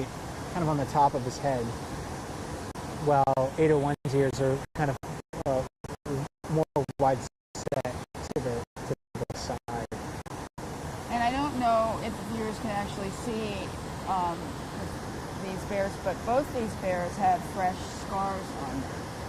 kind of on the top of his head, while 801's ears are kind of more wide set to the side. And I don't know if the viewers can actually see these bears, but both these bears have fresh scars on them.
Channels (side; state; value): both; identical; correlation 1.00